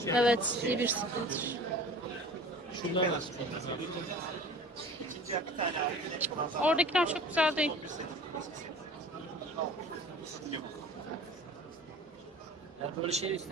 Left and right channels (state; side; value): normal; both; correlation 0.42